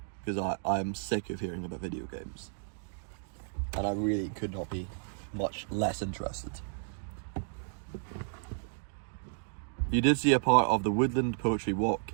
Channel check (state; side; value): silent; left; digital silence